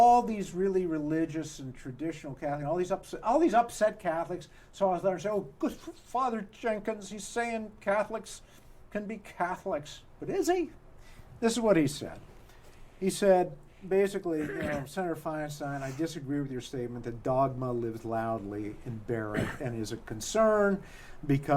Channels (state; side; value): identical; both; correlation 1.00